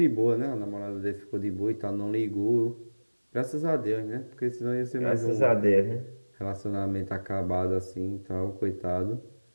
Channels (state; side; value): inverted; both; correlation -1.00